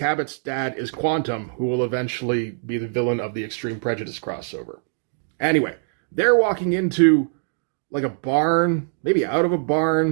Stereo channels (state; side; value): silent; left; 64 dB below the other